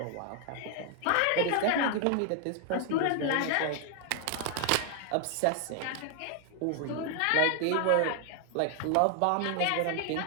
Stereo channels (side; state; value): both; different; correlation 0.00